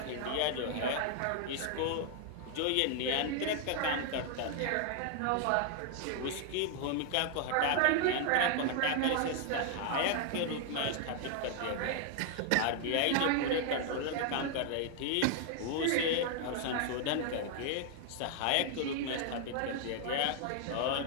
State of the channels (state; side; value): different; both; correlation 0.00